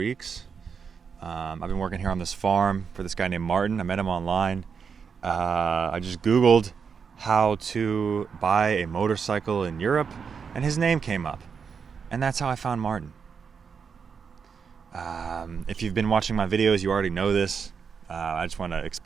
I've been working here on this farm for this guy named Martin. I met him online. I just Googled how to buy a motorcycle in Europe, and his name came up. And that's how I found Martin. If you've been watching my videos, you already know this. I just want to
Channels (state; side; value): quieter; left; 6.2 dB